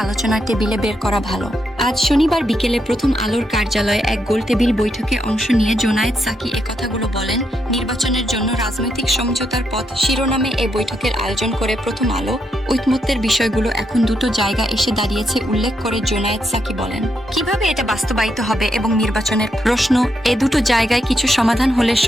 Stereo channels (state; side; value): normal; both; correlation 0.80